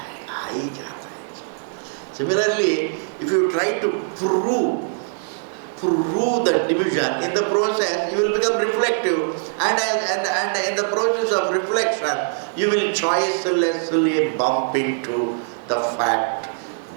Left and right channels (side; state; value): left; silent; digital silence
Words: Similarly, if you try to prove the division, in the process you will become reflective, and in the process of reflection you will choicelessly bump into the fact